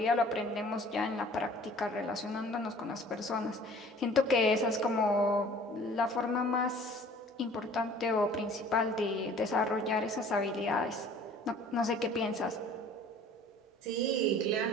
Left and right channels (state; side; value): normal; both; correlation 0.50